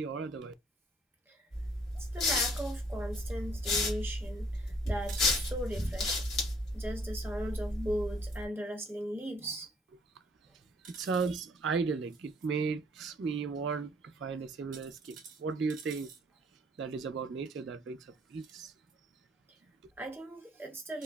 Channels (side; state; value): both; normal; correlation 0.63